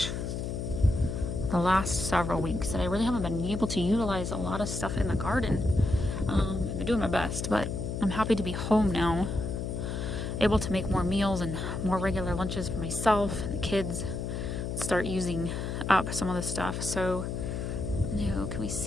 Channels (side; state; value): left; noise; hum, 3 dB below the sound